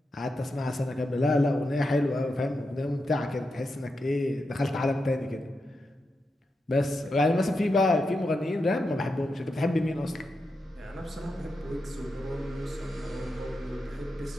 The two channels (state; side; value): normal; both; correlation 0.87